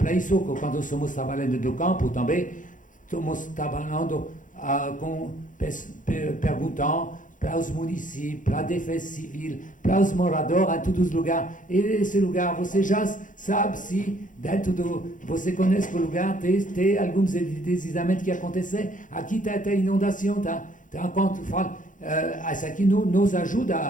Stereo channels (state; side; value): late; right; 0.38 ms